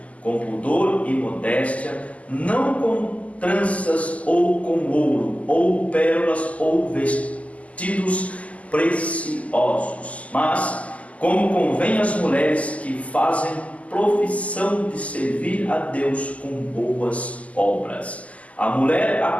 com pudor e modéstia, não com tranças ou com ouro, ou pérolas, ou vestidos preciosos, mas como convém às mulheres que fazem profissão de servir a Deus com boas obras. A mulher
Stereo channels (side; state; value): right; late; 0.069 ms